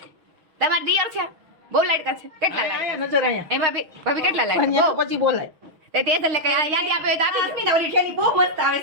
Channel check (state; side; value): late; left; 6.3 ms